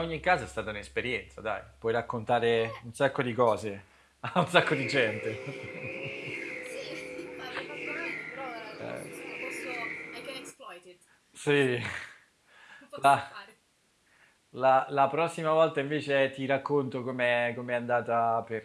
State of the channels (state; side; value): identical; both; correlation 1.00